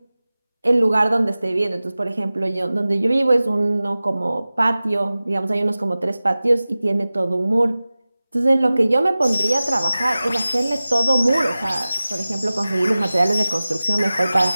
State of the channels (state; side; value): inverted; both; correlation -0.97